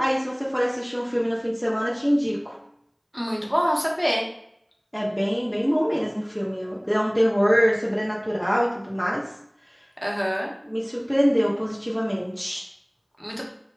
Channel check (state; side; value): identical; both; correlation 1.00